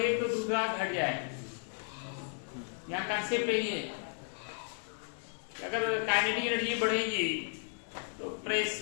तो दूसरा घट जाए। यहाँ कंसेप्ट यही है कि अगर काइनेटिक एनर्जी बढ़ेगी तो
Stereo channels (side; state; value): right; silent; 55 dB below the other